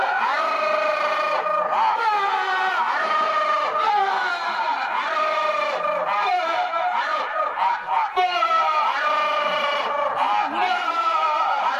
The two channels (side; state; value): both; identical; correlation 1.00